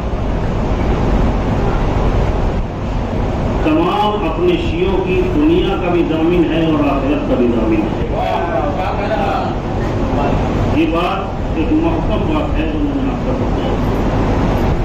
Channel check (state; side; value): identical; both; correlation 1.00